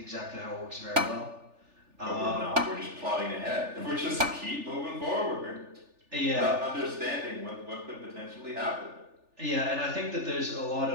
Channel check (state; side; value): late; left; 3.4 ms